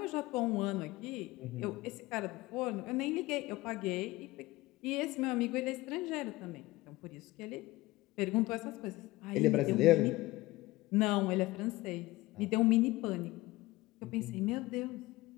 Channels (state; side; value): quieter; right; 19.5 dB